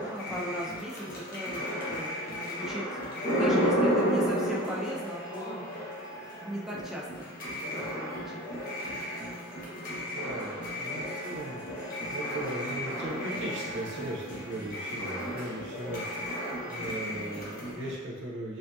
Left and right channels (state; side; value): normal; both; correlation 0.32